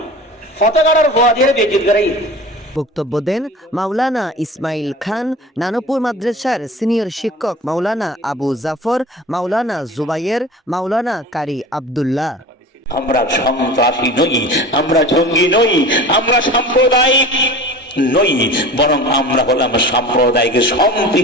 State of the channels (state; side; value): normal; both; correlation 0.37